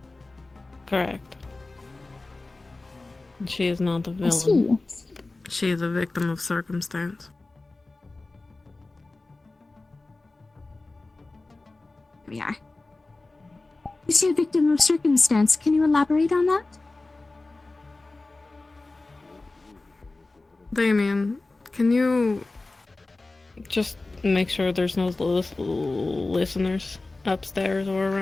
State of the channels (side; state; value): right; quieter; 3.2 dB